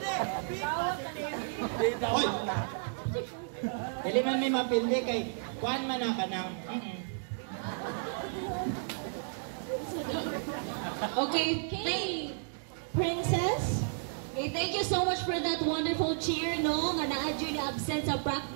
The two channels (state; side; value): silent; left; digital silence